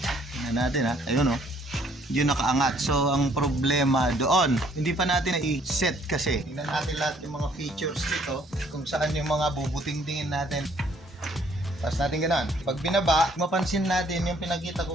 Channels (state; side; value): normal; both; correlation 0.63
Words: Tingnan natin ha, ayun oh. Yun nakaangat. So ang problema doon, hindi pa natin na-set kasi. Tingnan natin lahat yung mga features dito, kung saan yung mga bubuting-tingin natin. Tapos natin ganun. Pag binaba, mapansin natin yung pinakita